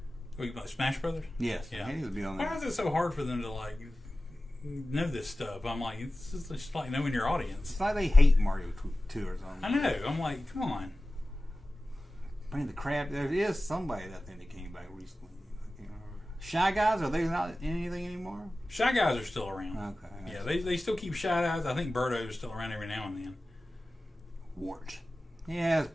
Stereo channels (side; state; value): both; normal; correlation 0.95